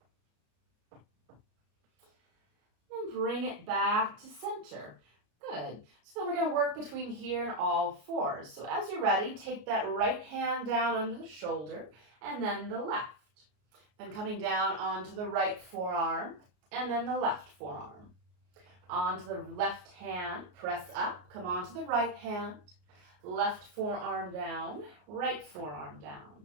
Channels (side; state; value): left; late; 33 ms